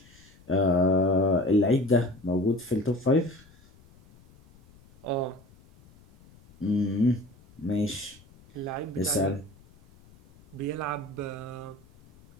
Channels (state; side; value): noise; left; rumble, 27 dB below the sound